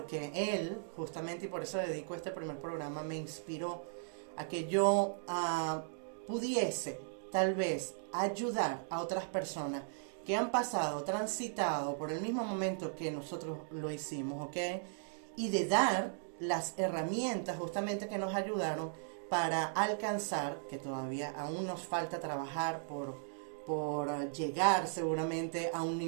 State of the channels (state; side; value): silent; left; digital silence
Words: él, justamente, y por eso dedico este primer programa, me inspiró a que yo pudiese tal vez ayudar a otras personas que han pasado, transitado por el mismo momento que nosotros lo hicimos, ¿ok? Y de dar las herramientas justamente que nos ayudaron para alcanzar, que todavía aún nos falta trabajar por llegar seguramente a un